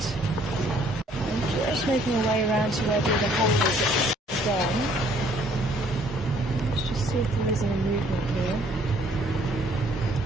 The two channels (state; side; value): normal; both; correlation 0.62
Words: I'm just making our way around to where the heifers are gone. Let's just see if there is any movement here.